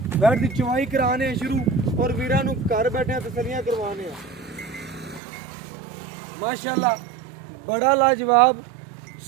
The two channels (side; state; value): left; drops out; at 5.2 s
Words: वैड़ की चुवाई कराने शुरू और वीरां नूं घर बैठे तसलियां करवाने माशाअल्लाह। बड़ा लाजवाब